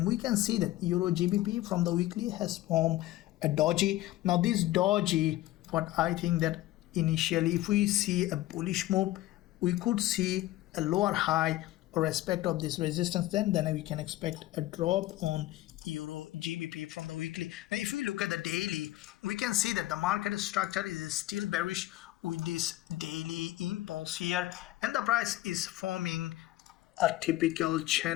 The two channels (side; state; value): right; quieter; 16.0 dB